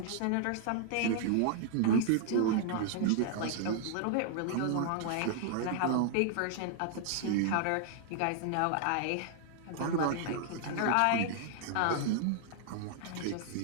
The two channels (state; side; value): different; both; correlation 0.00